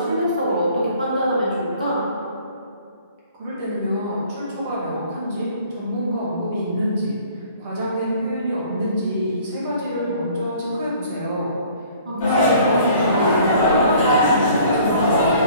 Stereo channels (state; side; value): inverted; both; correlation -0.54